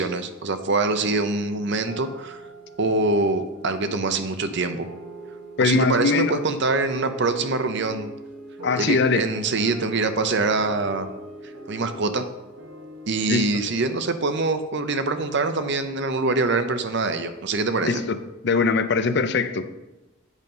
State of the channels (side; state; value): both; normal; correlation 0.10